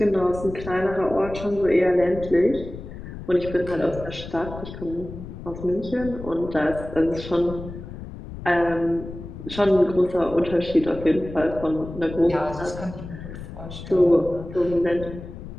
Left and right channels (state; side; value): noise; left; rumble, 12 dB below the sound